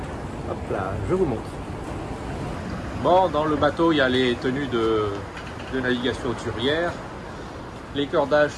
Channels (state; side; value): identical; both; correlation 1.00